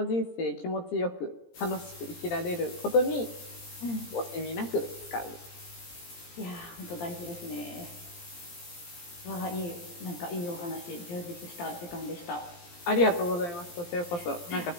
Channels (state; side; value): late; right; 17 ms